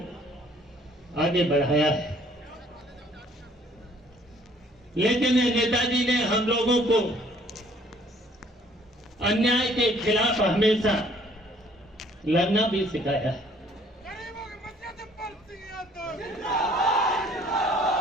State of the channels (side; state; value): both; normal; correlation 0.59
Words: आगे बढ़ाया है। लेकिन नेताजी ने हम लोगों को अन्याय के खिलाफ हमेशा लड़ना भी सिखाया है।